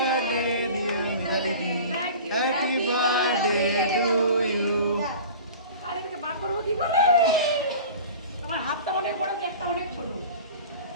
dear Mitali. Happy birthday to you. আরে এটাকে বার করবো কি করে তোমার হাতটা অনেক বড় একটা অনেক ছোট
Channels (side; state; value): both; inverted; correlation -0.39